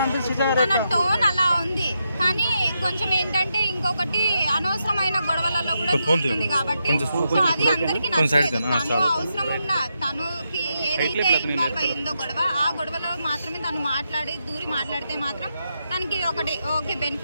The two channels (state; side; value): inverted; both; correlation -0.84